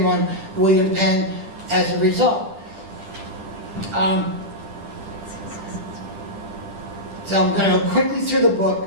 on William Penn as a result. So I'm going to go quickly through the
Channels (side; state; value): left; late; 10 ms